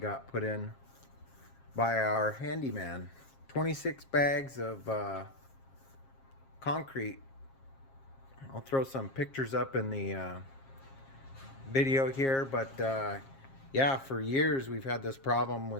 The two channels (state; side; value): late; right; 7.4 ms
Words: put in by our handyman. 26 bags of concrete. I'll throw some pictures up in the video here, but yeah, for years we've had this problem